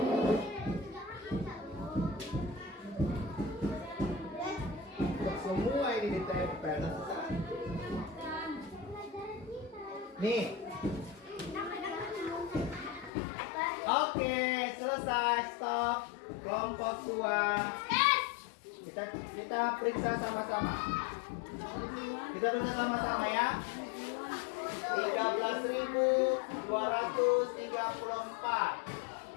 Semua ini ditempel. Nih. Oke, selesai. Stop. Kelompok 2. Kita periksa sama-sama. Kita periksa sama-sama ya.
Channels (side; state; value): right; drops out; at 13.1 s